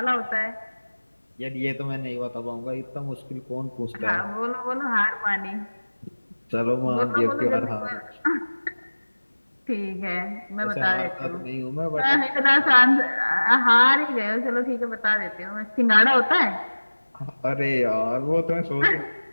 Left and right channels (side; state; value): both; inverted; correlation -1.00